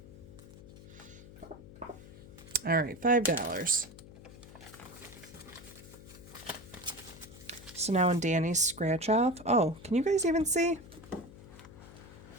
All right, $5. So now in Danny's scratch off. Oh, can you guys even see?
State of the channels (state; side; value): noise; left; hum, 17 dB below the sound